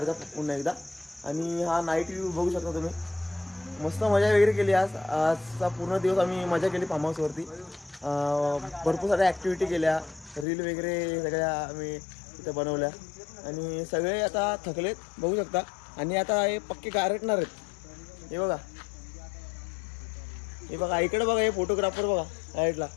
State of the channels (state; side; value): drops out; right; at 10.5 s